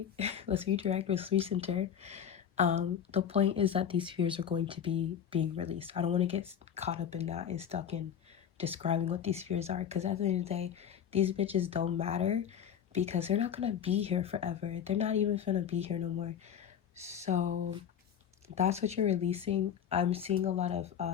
let's recenter. The point is that these fears are going to be being released. I don't want to get caught up in that and stuck in describing what these fears are, because at the end of the day, these bitches don't matter because they're not gonna be here forever. They're not even gonna be here no more. So that's what you're releasing. I'm seeing a lot of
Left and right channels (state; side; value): quieter; right; 8.8 dB